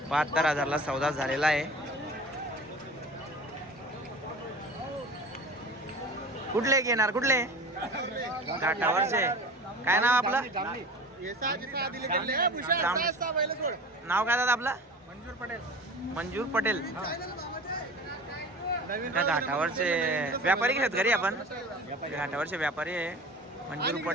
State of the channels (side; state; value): both; normal; correlation 0.38